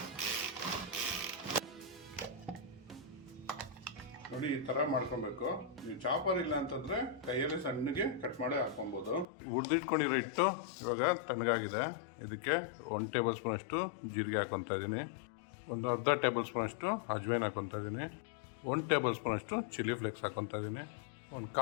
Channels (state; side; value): drops out; right; at 9.2 s